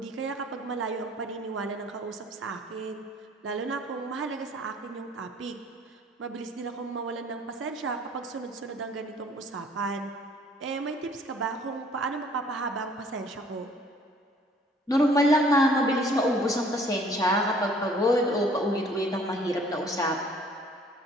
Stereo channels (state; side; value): normal; both; correlation 0.56